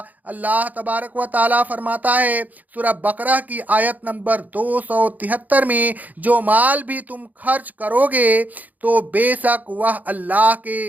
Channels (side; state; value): left; late; 0.080 ms